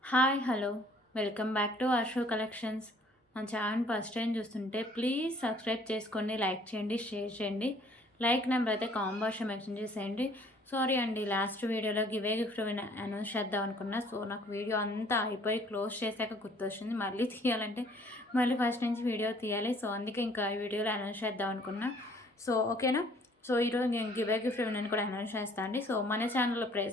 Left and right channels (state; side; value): normal; both; correlation 0.58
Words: Hi hello welcome back to Asho collections. మన ఛానల్ ఫస్ట్ టైం చూస్తుంటే ప్లీజ్ సబ్స్క్రైబ్ చేసుకోండి, లైక్ చేయండి, షేర్ చేయండి. లైక్ నెంబర్ అయితే కామెంట్ బాక్స్లో మెన్షన్ చేసేయండి. సారీ అండి, లాస్ట్ వీడియోలో గివే గిఫ్ట్ అనౌన్స్ చేద్దాం అనుకున్నా. సో నాకు వీడియో అంతా అయిపోయి క్లోజ్ చేశాక గుర్తొచ్చింది మళ్ళీ తీయాలంటే మళ్ళీ ఫస్ట్ నుంచి వీడియో తీయాలి. సో అందుకే ఇంకా ఈ వీడియోలో అనౌన్స్ చేద్దాం అనుకున్నా. సో ఓకేనా. సో ఈరోజు నేను గివే గిఫ్ట్ అని కూడా అనౌన్స్ చేస్తాను అండి. సో మన ఛానల్లో